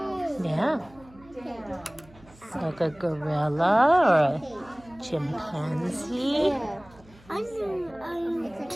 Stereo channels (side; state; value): right; noise; hum, 25 dB below the sound